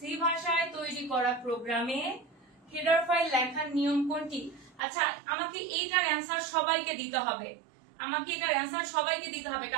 ভাষায় তৈরি করা প্রোগ্রামে হেডার ফাইল লেখার নিয়ম কোনটি? আচ্ছা, আমাকে এইটার অ্যান্সার সবাইকে দিতে হবে। আমাকে এটার অ্যান্সার সবাইকে দিতে হবে,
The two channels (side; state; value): left; drops out; at 4.8 s